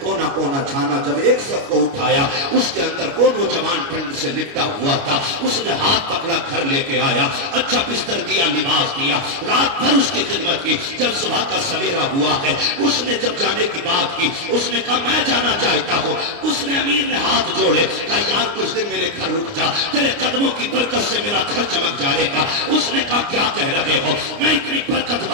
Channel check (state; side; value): late; left; 29 ms